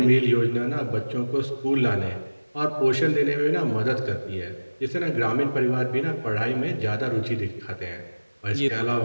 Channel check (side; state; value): both; inverted; correlation -1.00